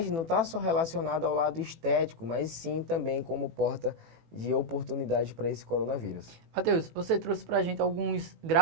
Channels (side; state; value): left; late; 18 ms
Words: não está só relacionada ao lado estético, mas sim também como porta de oportunidade para esse coronavírus. Matheus, você trouxe para a gente alguns